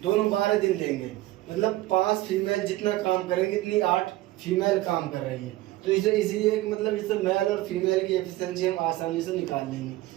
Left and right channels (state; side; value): quieter; left; 17.0 dB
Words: दोनों 12 दिन लेंगे। मतलब 5 फीमेल जितना काम करेंगे इतनी 8 फीमेल काम कर रही है। तो इसे इसीलिए मतलब इससे मेल और फीमेल की एफिशिएंसी हम आसानी से निकाल लेंगे।